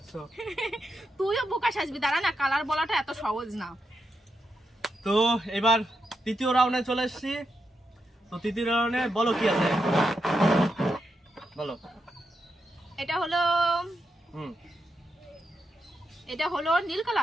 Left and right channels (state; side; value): normal; both; correlation 0.85